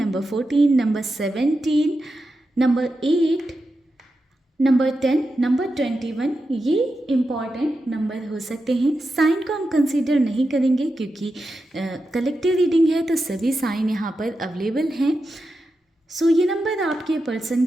14, number 17, number 8, number 10, number 21, ये इम्पॉर्टेंट नंबर हो सकते हैं। साइन को हम कंसीडर नहीं करेंगे क्योंकि कलेक्टिव रीडिंग है तो सभी साइन यहाँ पर अवेलेबल हैं। सो ये नंबर आपके पर्सन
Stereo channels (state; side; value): normal; both; correlation 0.89